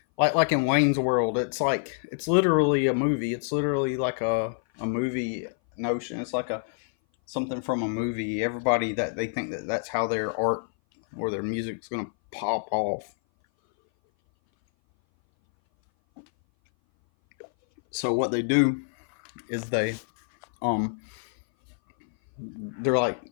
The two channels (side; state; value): right; silent; 58 dB below the other